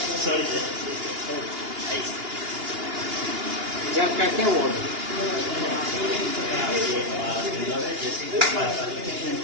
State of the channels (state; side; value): late; left; 2.8 ms